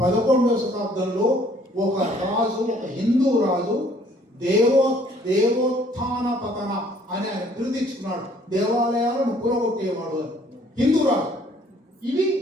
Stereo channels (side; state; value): both; normal; correlation 0.60